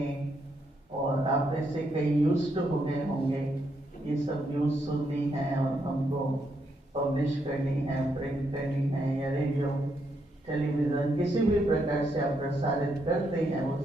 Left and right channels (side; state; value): both; normal; correlation 0.78